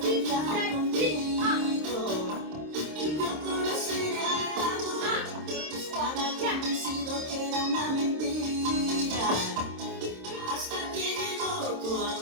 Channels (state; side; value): late; left; 26 ms